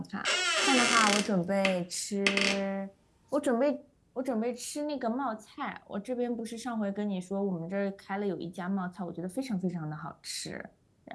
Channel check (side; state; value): both; identical; correlation 1.00